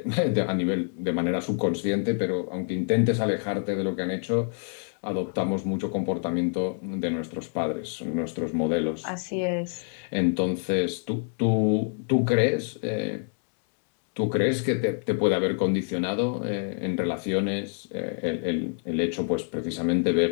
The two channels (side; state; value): right; silent; 60 dB below the other